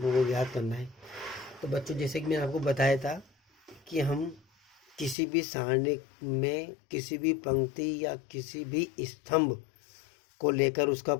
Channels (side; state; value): right; drops out; at 5.2 s